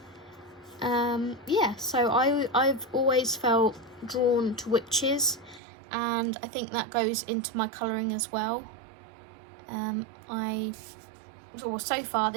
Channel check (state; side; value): drops out; left; at 5.6 s